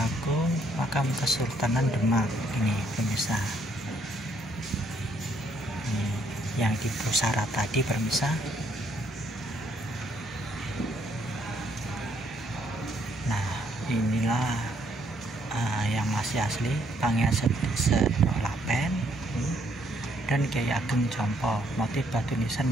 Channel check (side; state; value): both; normal; correlation 0.70